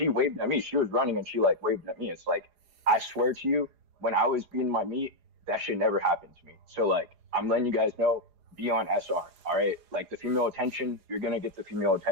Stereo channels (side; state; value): left; late; 4.9 ms